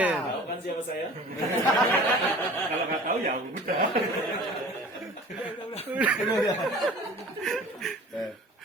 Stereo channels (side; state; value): both; normal; correlation 0.44